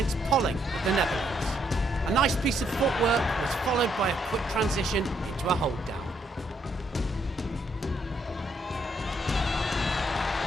Polling of the Netherlands. A nice piece of footwork was followed by a quick transition into a hold down.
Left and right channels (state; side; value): normal; both; correlation 0.73